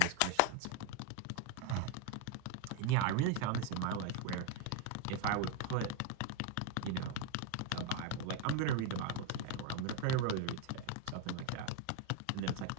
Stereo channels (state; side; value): different; both; correlation 0.01